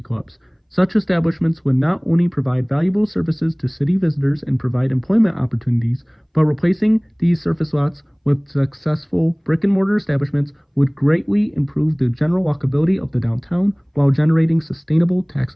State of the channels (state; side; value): identical; both; correlation 1.00